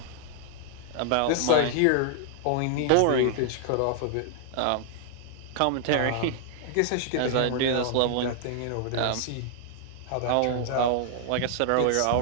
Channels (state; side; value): different; both; correlation 0.00